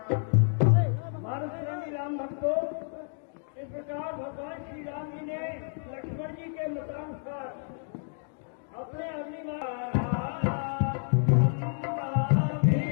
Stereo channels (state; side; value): silent; right; digital silence